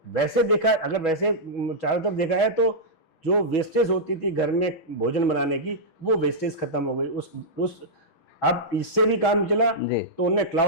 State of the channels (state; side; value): late; right; 6.2 ms